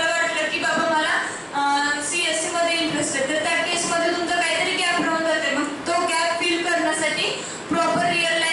वाटलं की बाबा मला CSE मध्ये इंटरेस्ट आहे, तर त्या केसमध्ये तुमचा काहीतरी गॅप राहून जाते. मग तो गॅप फिल करण्यासाठी proper real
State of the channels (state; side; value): identical; both; correlation 1.00